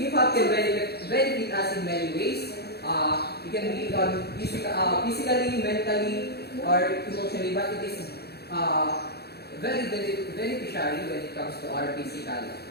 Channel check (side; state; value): right; late; 0.47 ms